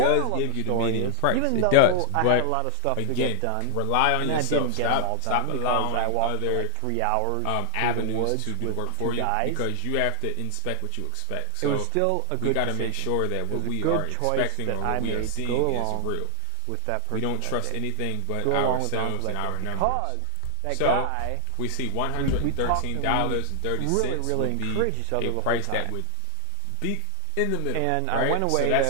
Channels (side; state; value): both; different; correlation 0.00